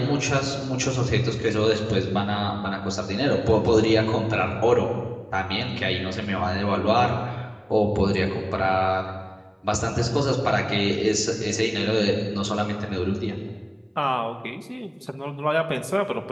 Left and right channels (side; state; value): both; identical; correlation 1.00